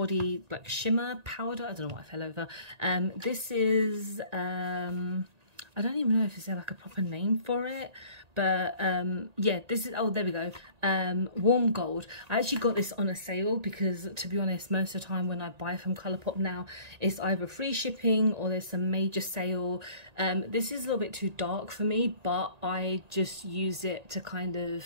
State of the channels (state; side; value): late; left; 1.9 ms